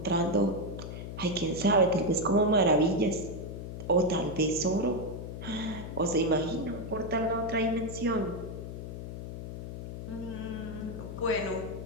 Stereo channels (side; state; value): left; noise; hum, 8 dB below the sound